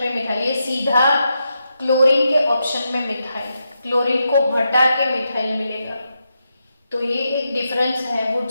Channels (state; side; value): inverted; both; correlation -0.85